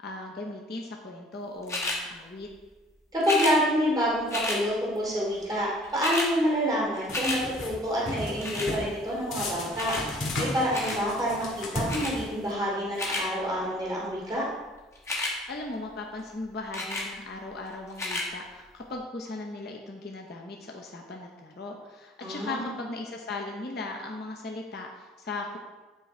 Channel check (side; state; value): both; normal; correlation 0.52